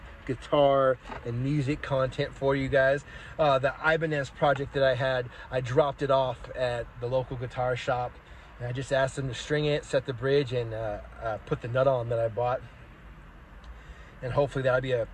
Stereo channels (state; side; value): identical; both; correlation 1.00